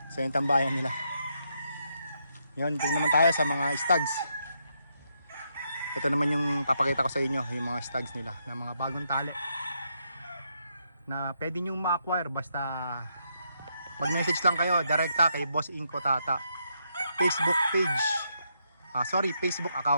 So yung tambayan nila. Yun, tingnan naman tayo sa mga stags. Ito naman yung papakita ko sa inyo, yung mga stags nila na mga bagong tali na pwede nyo ma-acquire basta mag-message lang kayo direkta kay Boss Inko Tata Facebook page, Facebook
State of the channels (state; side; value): inverted; both; correlation -0.78